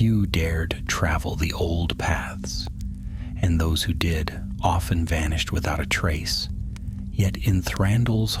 dared travel the old paths, and those who did often vanished without a trace. Yet in Thranduil's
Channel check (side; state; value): both; identical; correlation 1.00